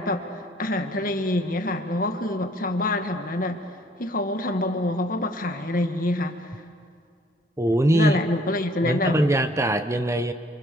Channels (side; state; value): both; normal; correlation 0.60